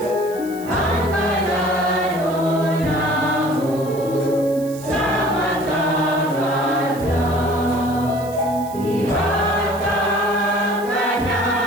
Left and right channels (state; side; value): noise; right; hiss, 19 dB below the sound